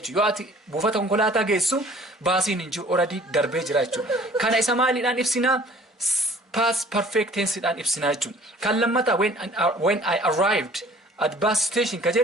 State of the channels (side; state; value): both; normal; correlation 0.52